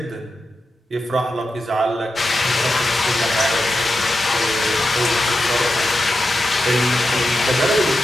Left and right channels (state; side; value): normal; both; correlation 0.89